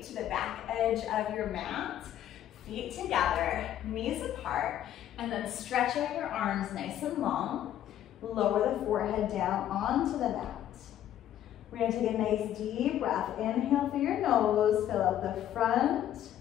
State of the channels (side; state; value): right; quieter; 11.5 dB